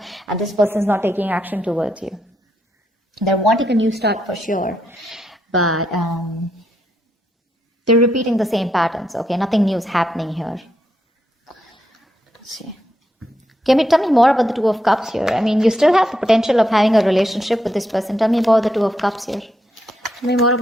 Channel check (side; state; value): both; normal; correlation 0.80